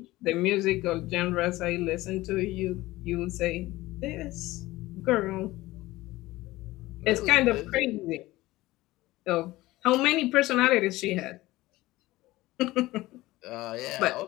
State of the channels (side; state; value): right; quieter; 18.3 dB